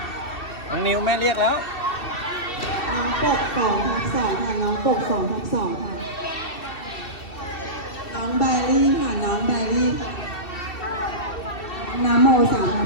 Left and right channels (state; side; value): late; right; 2.7 ms